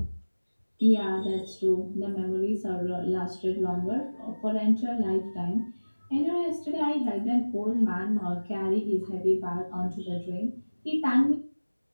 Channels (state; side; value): inverted; both; correlation -1.00